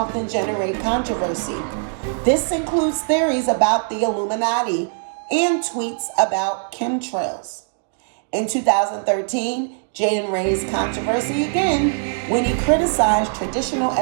generate controversy. This includes theories about the Illuminati and tweets about chemtrails. In 2013, Jaden raised controversy again when he criticized traditional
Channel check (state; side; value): silent; left; digital silence